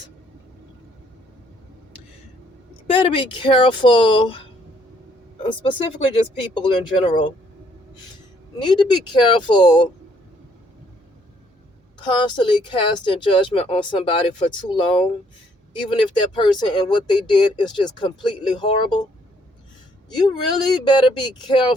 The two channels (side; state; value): both; normal; correlation 0.67